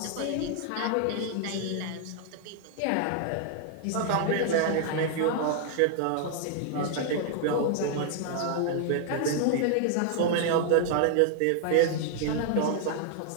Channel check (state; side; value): different; both; correlation 0.00